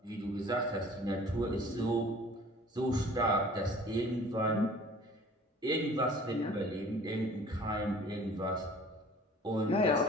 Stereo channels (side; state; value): both; normal; correlation 0.48